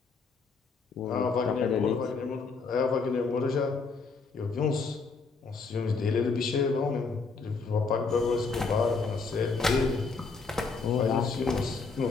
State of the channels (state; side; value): quieter; right; 4.6 dB